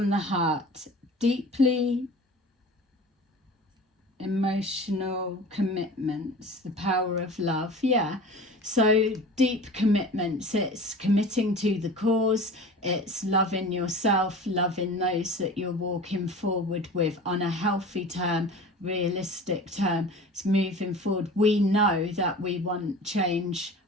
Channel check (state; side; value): normal; both; correlation 0.38